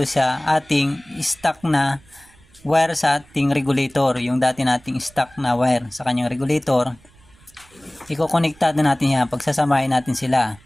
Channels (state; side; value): noise; right; rumble, 28 dB below the sound